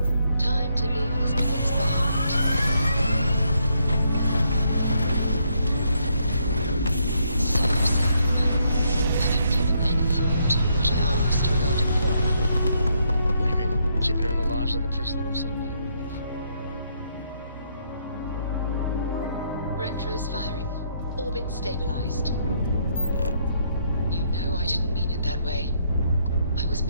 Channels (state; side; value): inverted; both; correlation -0.74